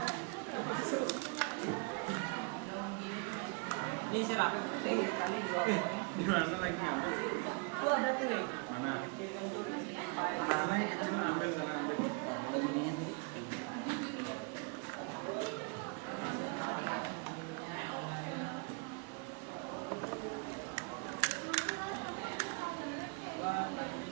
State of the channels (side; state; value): left; quieter; 33.4 dB